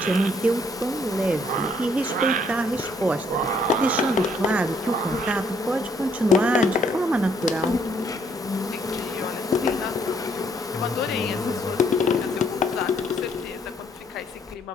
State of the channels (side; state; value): both; normal; correlation 0.67